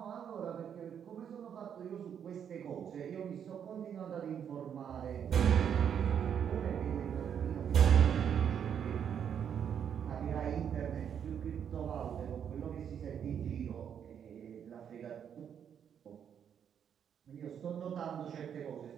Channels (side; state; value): left; quieter; 8.4 dB